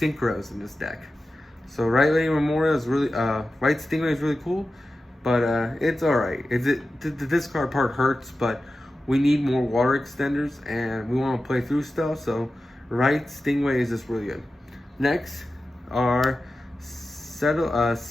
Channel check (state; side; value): normal; both; correlation 0.93